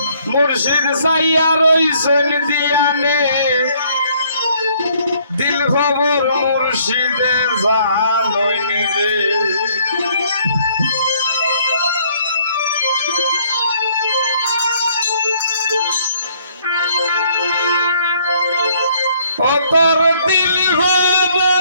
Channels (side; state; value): both; inverted; correlation -0.65